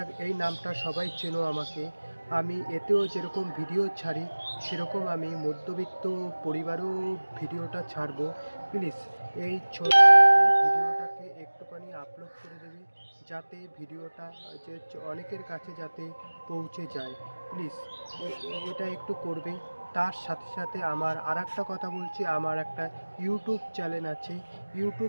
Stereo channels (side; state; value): both; inverted; correlation -1.00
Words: এই নামটা সবাই চেনো আমাকে। আমি এতেও যেরকম ভিডিও ছাড়ি, সেরকম আমি মধ্যবিত্ত পরিবারেও ভিডিওটা ছাড়বো। প্লিজ এই ভিডিওটাকে একটুখানি আপলোড করে দেবে, যাতে ভিডিওটা যে অনেকের কাছে যাতে পৌঁছে যায়। প্লিজ এটা একটু করবে। তার সাথে সাথে আমার আর একটা কথা বলছি, আমার একটা ইউটিউব চ্যানেল আছে।